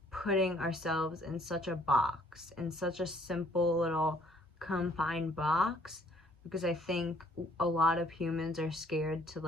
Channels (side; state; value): both; normal; correlation 0.62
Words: putting ourselves in such a box, in such a simple little confined box, because I think a lot of humans are scared to